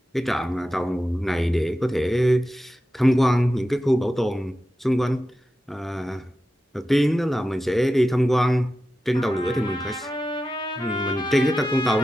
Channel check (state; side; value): normal; both; correlation 0.92